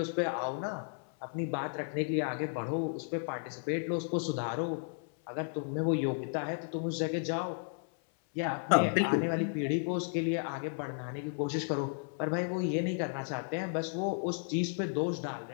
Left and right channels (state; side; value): silent; right; 55 dB below the other